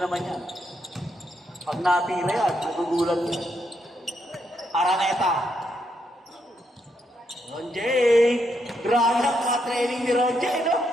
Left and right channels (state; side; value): normal; both; correlation 0.79